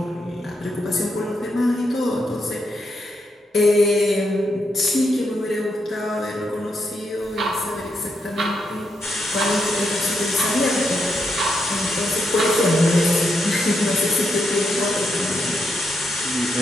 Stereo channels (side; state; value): both; normal; correlation 0.82